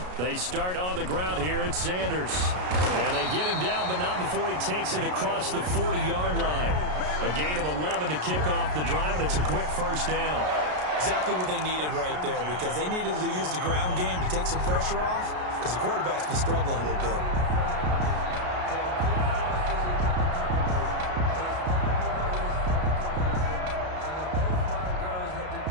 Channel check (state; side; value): late; left; 33 ms